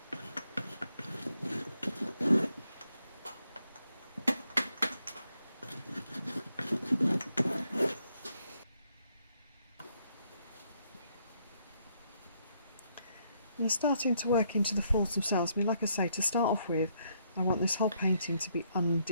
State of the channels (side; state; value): both; inverted; correlation -0.74